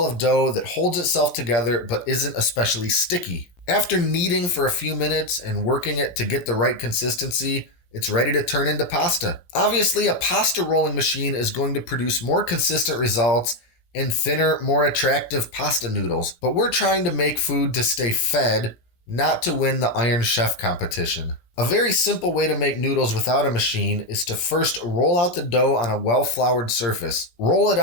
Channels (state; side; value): late; right; 17 ms